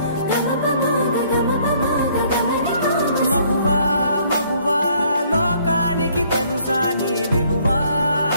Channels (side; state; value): both; inverted; correlation -0.62